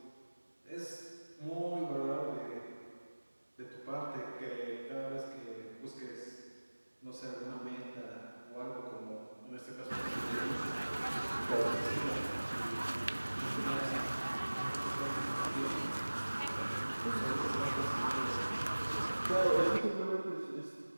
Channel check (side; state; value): both; inverted; correlation -1.00